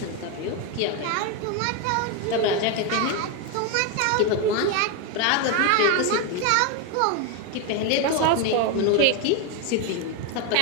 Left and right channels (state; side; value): different; both; correlation 0.02